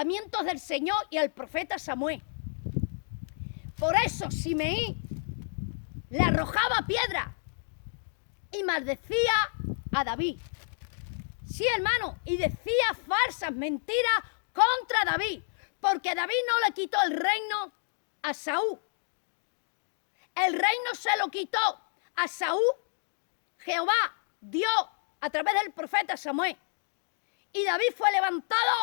del Señor y al profeta Samuel. Por eso Simeí le arrojaba piedra y maldecía a David. Sí, hermano, y decía falsas mentiras contra David, porque David no le quitó el reino a Saúl. El reino se lo quitó a Saúl, Jehová, Dios, a través del profeta Samuel. Y David fue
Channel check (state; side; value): silent; right; digital silence